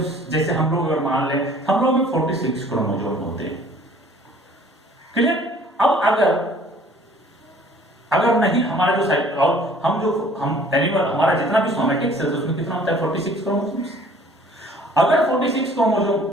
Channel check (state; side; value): normal; both; correlation 0.54